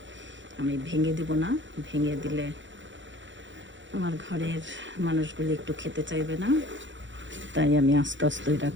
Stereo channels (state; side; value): late; left; 0.54 ms